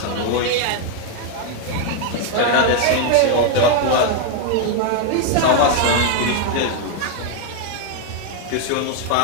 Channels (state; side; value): different; both; correlation 0.00